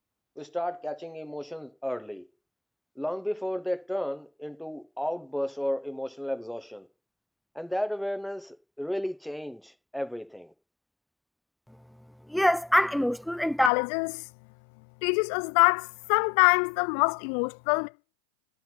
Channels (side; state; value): right; drops out; at 13.7 s